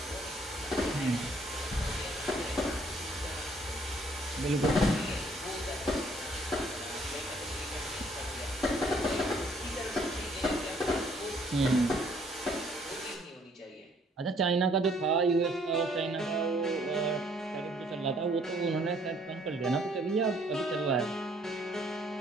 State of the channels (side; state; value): both; normal; correlation 0.63